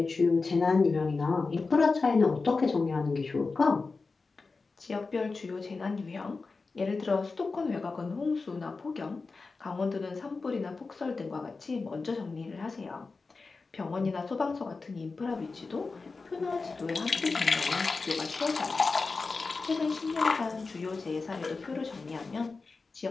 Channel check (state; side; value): quieter; right; 4.1 dB